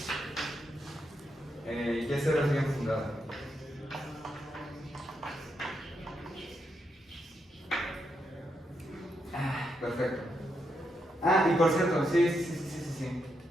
Y0 es bien fundada. Perfecto. Ah, y por cierto, sí.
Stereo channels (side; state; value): both; normal; correlation 0.81